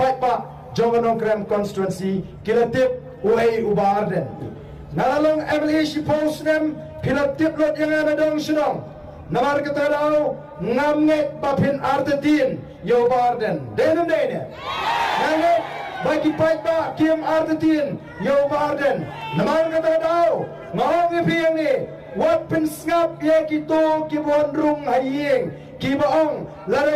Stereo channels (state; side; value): identical; both; correlation 1.00